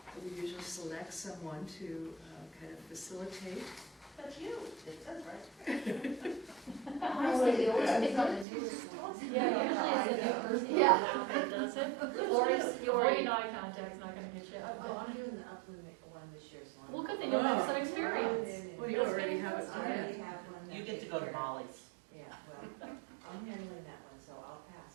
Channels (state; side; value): drops out; left; at 8.5 s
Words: we usually select someone to kind of facilitate. That's you. It says right. Honestly, they always pick on the newest ones. Yeah, usually it's a new person. Yeah. That does it. Lori's Lori eye contact's not gonna get you. Oh, I'm doing the upland one this year, so I'm. Well, good thing you'll have some experience. Well, you already have it I planned. already have one. You get to go to Molly's. Yeah, well, I'm handling that one, so I'll